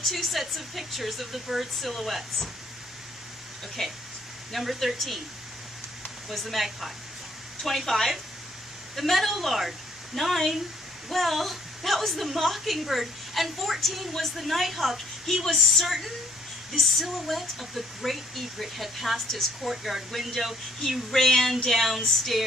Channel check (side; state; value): both; normal; correlation 0.63